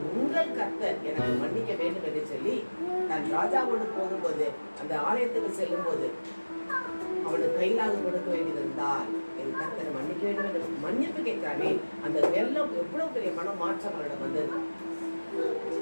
உங்கள் கர்த்தர் எனக்கு மன்னிக்க வேண்டும் என்று சொல்லி தன் ராஜாவோடு போகும்போது, அந்த ஆலயத்துக்கு செல்லும் போது அவனுக்கு கையிலாக கொடுக்க வேண்டியிருந்தால் என் கர்த்தரை மன்னிக்க வேண்டும் என்று மன்னிப்பு கேட்கிறானே, அந்த வெள்ளம் எவ்வளவு பெரிய மனம் மாற்றம் அவனிடம் வந்தது.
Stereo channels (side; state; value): both; inverted; correlation -1.00